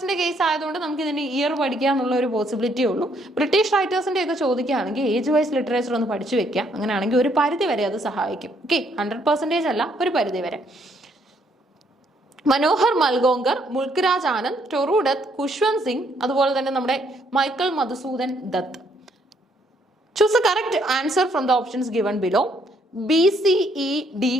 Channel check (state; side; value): normal; both; correlation 0.69